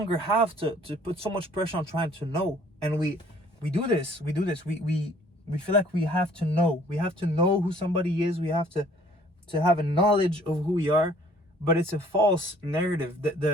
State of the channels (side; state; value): both; normal; correlation 0.57